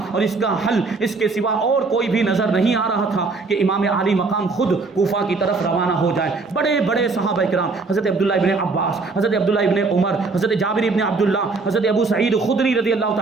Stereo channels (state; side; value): quieter; left; 4.0 dB